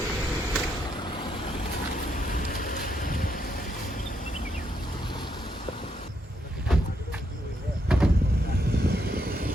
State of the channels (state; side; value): normal; both; correlation 0.77